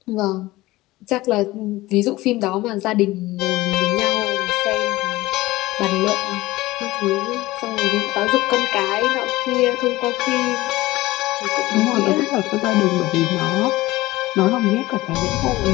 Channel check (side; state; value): right; quieter; 18.6 dB